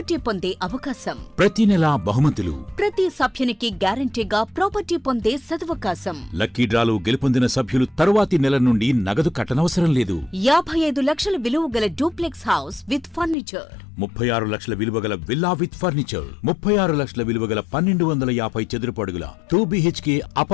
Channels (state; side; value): drops out; right; at 13.4 s